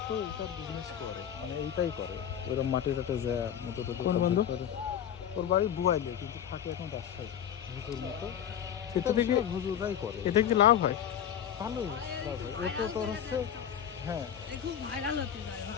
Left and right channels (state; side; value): quieter; right; 9.4 dB